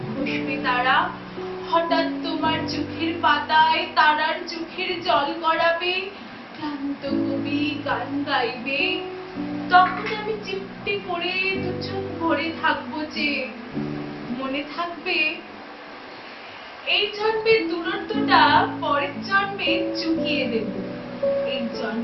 খসবে তারা, হঠাৎ তোমার চোখের পাতায় তারার চোখের জল গড়াবে, ক্লান্ত কবি গান গাইবে, তখন আমি চিমটি করে দুচোখ ভরে থাকবো যে। মনে থাকবে এই জন্মের দূরত্বটা পরের জন্মে চুকিয়ে দেব, এই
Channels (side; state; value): both; identical; correlation 1.00